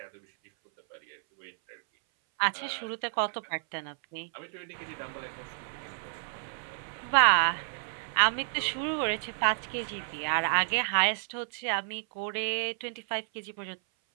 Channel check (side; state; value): left; silent; 57 dB below the other